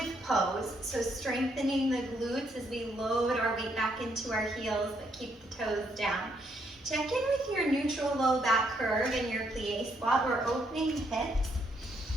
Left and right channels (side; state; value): both; normal; correlation 0.73